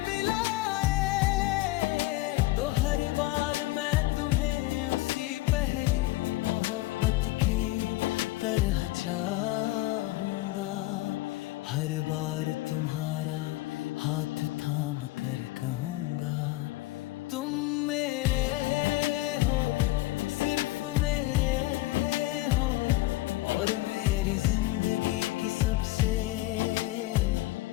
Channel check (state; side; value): quieter; right; 18.3 dB